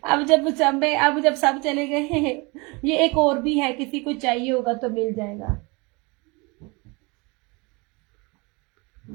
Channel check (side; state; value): left; quieter; 27.5 dB